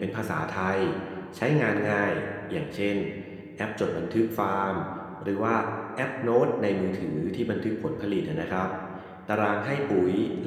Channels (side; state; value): both; identical; correlation 1.00